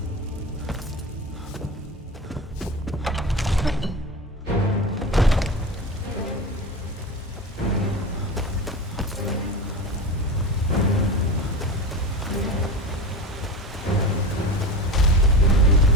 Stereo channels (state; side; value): normal; both; correlation 0.28